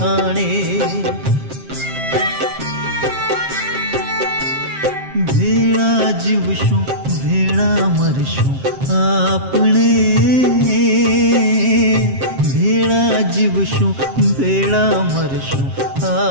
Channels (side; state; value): left; late; 7.5 ms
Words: भेड़ा जीवशुं भेड़ा मरशुं आपणे भेड़ा जीवशुं भेड़ा मरशुं